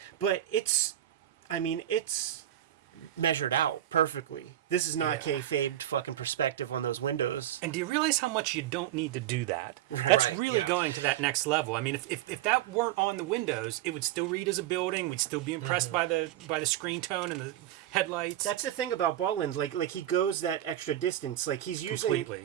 But it's measured out perfectly. This is not kayfabed fucking perspective on those windows. And do you realize how much you don't need to do that? Right. That's Right, really yeah. going to that next level. I mean, if that weren't on the windows, it would still read as a building. We'd still be impressed by the screen tone and the headlights. That's the thing about Bolland. Like he goes that extra distance. Like he's Completely.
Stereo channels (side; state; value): left; quieter; 12.6 dB